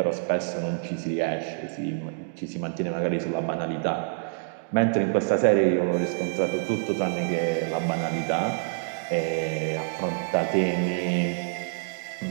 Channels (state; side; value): silent; left; digital silence